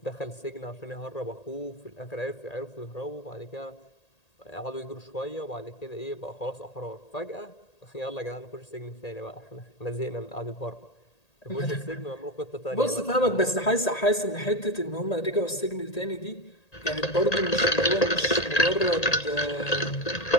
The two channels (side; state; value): right; late; 1.8 ms